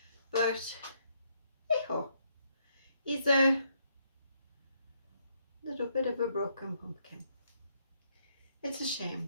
But, hey-ho. He's a little bit of a broken pumpkin. It's a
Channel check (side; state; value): both; inverted; correlation -0.74